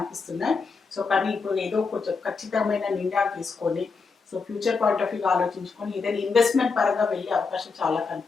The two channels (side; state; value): right; quieter; 4.7 dB